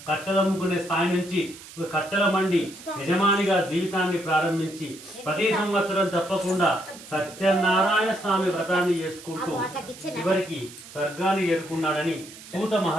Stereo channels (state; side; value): noise; right; hiss, 17 dB below the sound